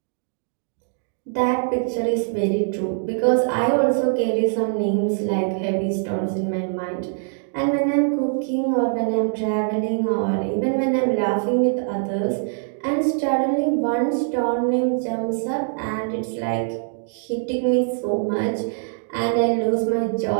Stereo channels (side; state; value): left; silent; digital silence